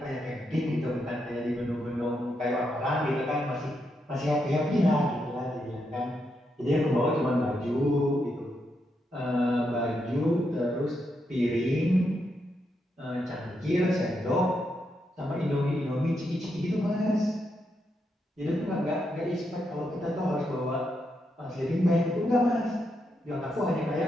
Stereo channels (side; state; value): both; normal; correlation 0.82